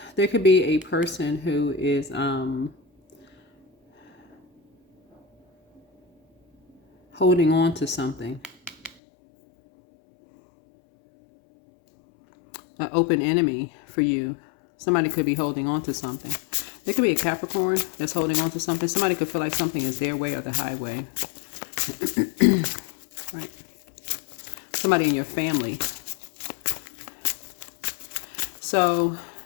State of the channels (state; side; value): drops out; right; at 9.0 s